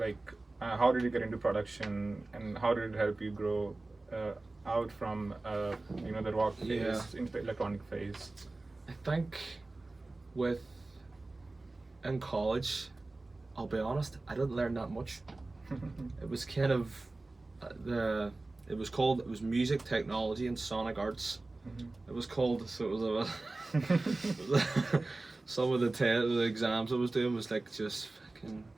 how did you get into production, and how did it help you grow out from the rock phase into the electronic phase? I think in college, I'll be honest, I didn't learn that much. It was kind of it was music technology and sonic arts. It was called, so it was some of the exams I was doing was like just fucking,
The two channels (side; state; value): left; quieter; 3.1 dB